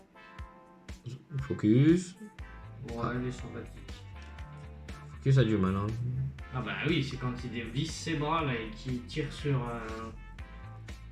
Focus. Ouais, elle est sympathique. Focus a du mal, hein. Ah bah oui, c'est quand il dévisse ses bras là et qu'il tire sur.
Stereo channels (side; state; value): both; identical; correlation 1.00